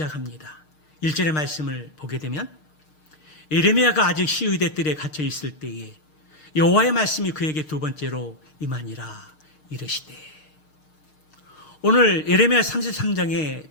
1절의 말씀을 보게 되면 예레미야가 아직 시위대 뜰에 갇혀 있을 때에 여호와의 말씀이 그에게 두 번째로 임하니라 이르시되. 오늘 예레미야 33장의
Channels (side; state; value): right; late; 6.5 ms